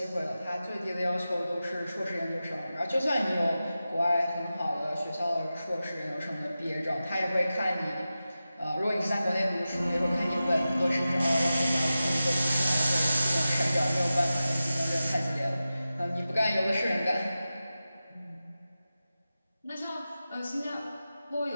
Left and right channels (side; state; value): both; inverted; correlation -0.94